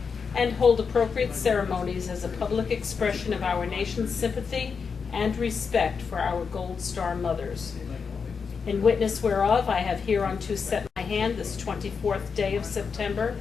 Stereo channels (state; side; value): quieter; right; 5.7 dB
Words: and hold appropriate ceremonies as a public expression of our nation's sympathy and respect for our Gold Star mothers. In witness whereof, I have hereunto set my hand this 24th day of September